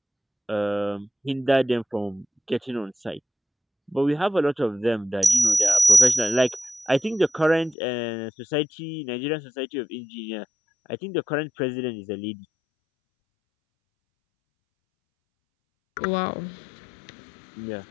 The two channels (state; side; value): drops out; right; at 7.8 s